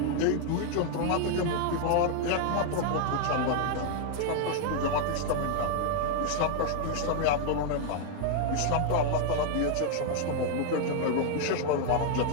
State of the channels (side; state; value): both; different; correlation 0.00